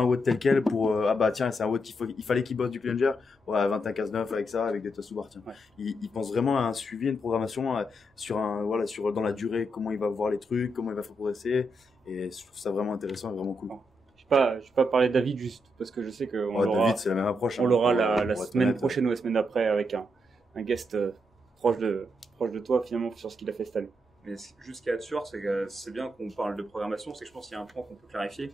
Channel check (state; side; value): normal; both; correlation 0.81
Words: un watt tel quel pour, tiens, c'est un watt il fallait qu'il bosse du plunger. Ouais, 21-15-9 avec ça, avec des toasts sous barre, tiens. Il pense vraiment à un suivi, une programmation, dans la durée, comment il va voir les trucs, comment il va faire progresser. Et je trouve ça vraiment intéressant et vraiment cool. Je vais pas parler de David juste parce que je sais que David, c'est la même approche. On l'aura la semaine prochaine ou la semaine d'après avec un guest proche de toi finalement sur ce qu'il a fait cette année. Mais juste ce qu'il y a de sûr, c'est que c'est bien qu'on parle de programmation, c'est que je pense qu'il y a un point qu'on peut clarifier,